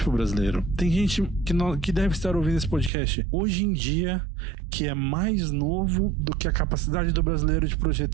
para o brasileiro. Tem gente que deve estar ouvindo esse podcast hoje em dia que é mais novo do que a capacidade do brasileiro de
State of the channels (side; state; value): left; drops out; at 2.9 s